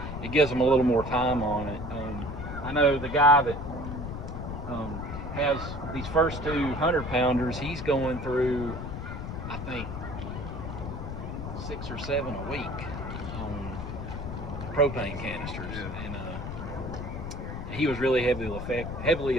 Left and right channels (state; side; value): noise; left; rumble, 6 dB below the sound